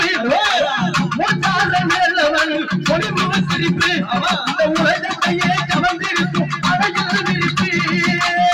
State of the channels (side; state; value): both; identical; correlation 1.00